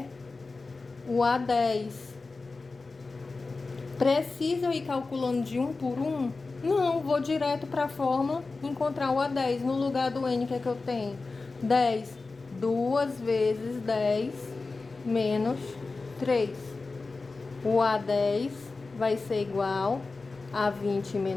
o A10. Precisa eu ir calculando de 1 por 1? Não, vou direto para a fórmula, encontrar o A10. No lugar do N, que é que eu tenho? 10. 2 vezes 10 menos 3. O A10 vai ser igual a 20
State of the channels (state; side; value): quieter; right; 3.8 dB